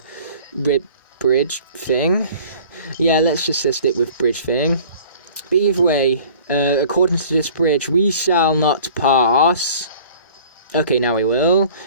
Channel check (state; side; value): inverted; both; correlation -0.48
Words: bridge thing. Yeah, let's just stick with bridge thing. But either way, according to this bridge, we shall not pass. Okay, now we will.